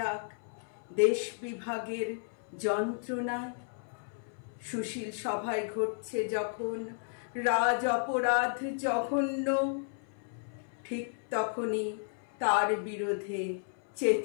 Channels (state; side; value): silent; right; 56 dB below the other